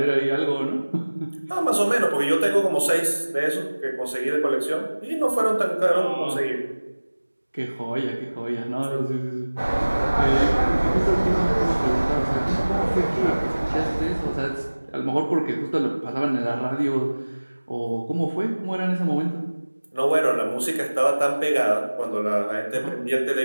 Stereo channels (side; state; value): both; inverted; correlation -1.00